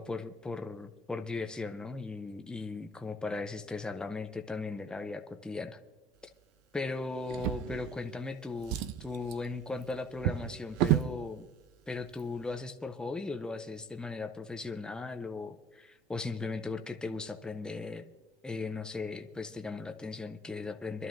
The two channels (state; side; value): normal; both; correlation 0.54